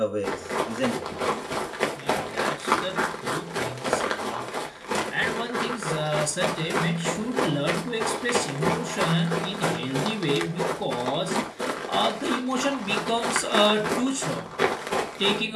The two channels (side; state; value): both; identical; correlation 1.00